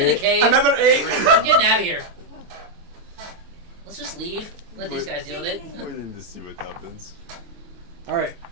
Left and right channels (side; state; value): left; late; 23 ms